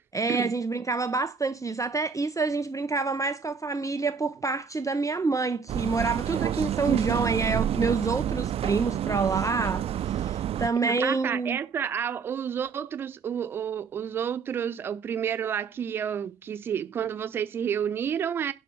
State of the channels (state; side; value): quieter; left; 5.5 dB